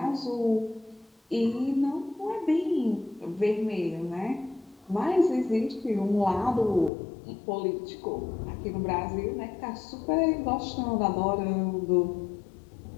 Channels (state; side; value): drops out; right; at 6.9 s